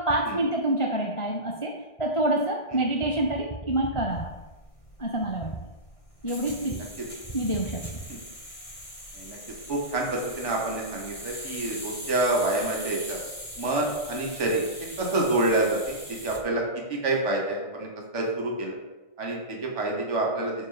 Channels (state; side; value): late; right; 1.6 ms